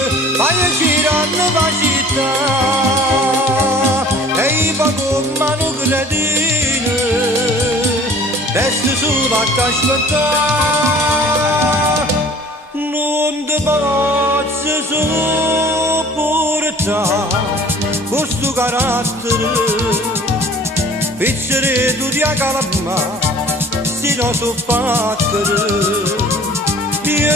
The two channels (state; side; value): normal; both; correlation 0.49